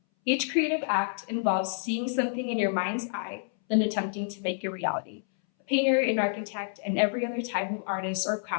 Each creative act involves seeing something in your mind's eye, then attempting to make it reality. A painter, an architect, and every other type of artist or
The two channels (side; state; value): right; silent; 59 dB below the other